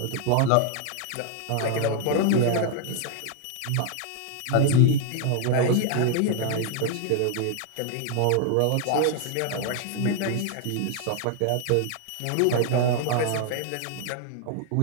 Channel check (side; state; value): both; different; correlation 0.00